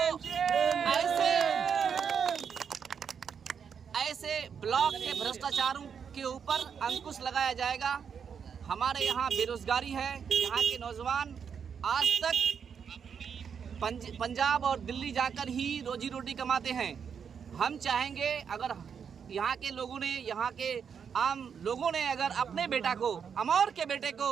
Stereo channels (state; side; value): quieter; left; 7.0 dB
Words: ऐसे ब्लॉक के भ्रष्टाचारों के ऊपर अंकुश लगाया जाएगा। हमारे यहाँ बेरोजगारी है, यहाँ के नौजवान आज तक पंजाब और दिल्ली जाकर ही रोजी रोटी कमाते हैं। हम चाहेंगे अगर यहाँ के लोगों ने, यहाँ के आम लोगों ने अगर अपने बेटा को, अमौर के बेटे